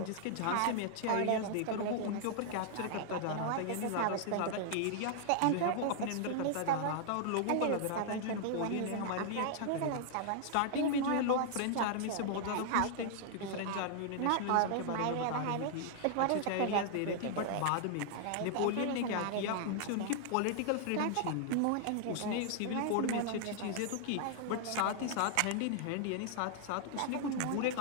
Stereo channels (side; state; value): both; different; correlation 0.00